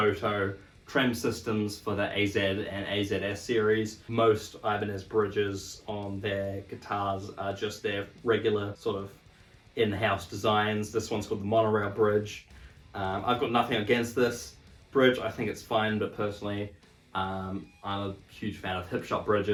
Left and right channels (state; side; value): identical; both; correlation 1.00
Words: trem systems for the AZ and AZS series. Most Ibanez bridges on their guitars are just their regular sort of in-house designs. This one's called the monorail bridge. I've got nothing against this bridge. I think it's fine, but personally, I'm a huge fan of hip shot